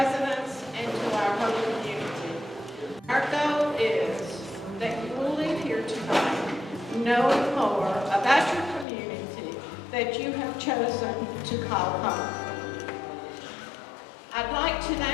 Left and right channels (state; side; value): drops out; right; at 8.8 s